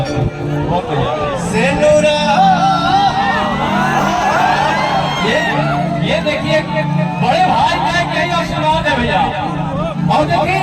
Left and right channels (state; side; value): identical; both; correlation 1.00